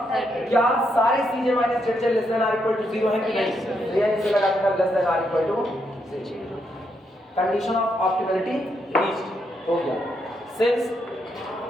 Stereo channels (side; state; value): both; normal; correlation 0.79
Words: क्या सारे CJ - ZJ ≤ 0 हैं कि नहीं, ये इसे लगा देना ≤ 0। कंडीशन ऑफ ऑप्टिमलिटी रीच्ड हो गया, since